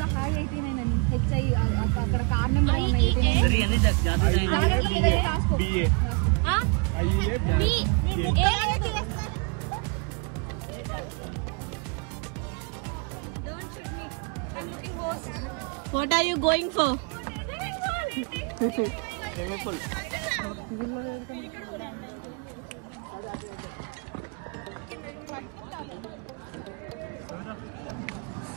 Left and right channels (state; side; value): quieter; left; 32.8 dB